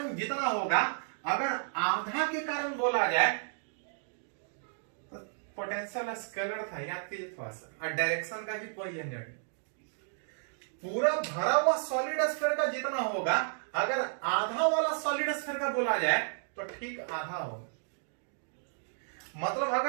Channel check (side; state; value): left; silent; digital silence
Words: जितना होगा, अगर आधा के कारण बोला जाए तो पोटेंशियल स्केलर था, याद कीजिए थोड़ा सा, और डायरेक्शन का भी कोई झंझट नहीं। पूरा भरा हुआ सॉलिड स्फीयर का जितना होगा, अगर आधा वाला सॉलिड स्फीयर का बोला जाए तो ठीक आधा होगा। मतलब